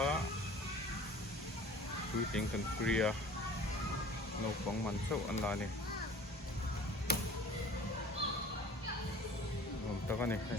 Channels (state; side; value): normal; both; correlation 0.44